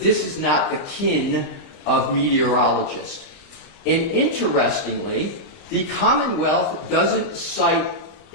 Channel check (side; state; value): right; late; 29 ms